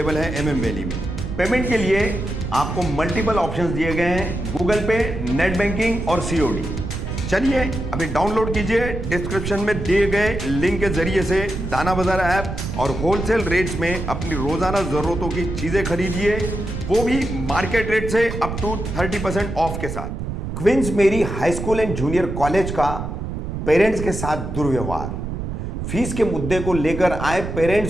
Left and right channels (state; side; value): noise; right; rumble, 5 dB below the sound